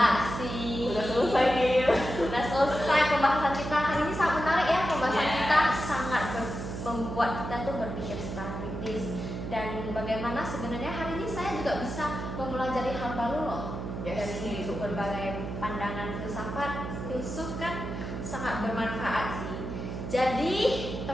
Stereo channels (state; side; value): noise; right; hum, 6 dB below the sound